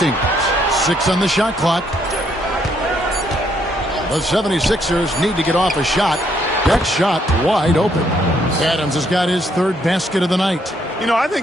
6 on the shot clock. The 76ers need to get off a shot. That shot wide open. Adams has got his 3rd basket of the night. You know, I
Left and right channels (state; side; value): normal; both; correlation 0.71